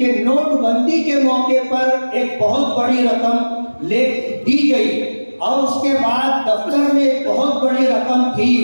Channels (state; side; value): inverted; both; correlation -1.00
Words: नोटबंदी के मौके पर एक बहुत बड़ी रकम दी गई और उसके बाद दफ्तर में एक बहुत बड़ी रकम थी